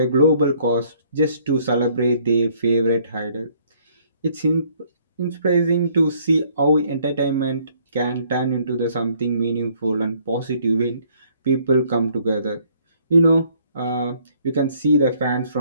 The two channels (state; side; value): inverted; both; correlation -0.63